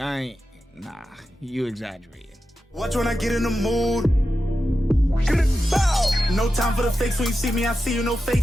ain't, nah, you exaggerating. Watch when I get in the mood. No time for the fakes. When you see me, I see you, no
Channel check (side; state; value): both; normal; correlation 0.91